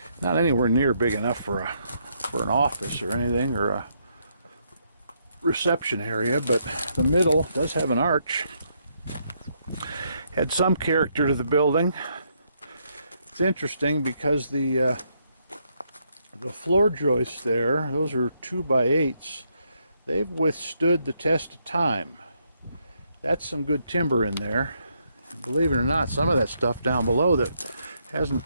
not anywhere near big enough for an office or anything, or a reception area, but the middle does have an arch. Had some character to the building. It's interesting because the floor joists there, those are 2x8s. They've withstood the test of time. That's some good timber in there. And believe it or not, some of that stuff down below that hasn't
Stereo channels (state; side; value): inverted; both; correlation -0.75